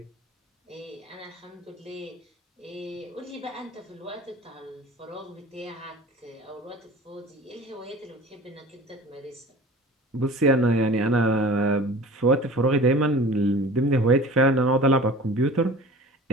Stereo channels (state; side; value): normal; both; correlation 0.41